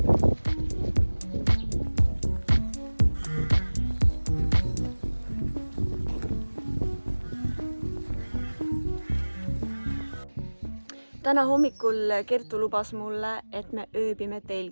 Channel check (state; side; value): inverted; both; correlation -1.00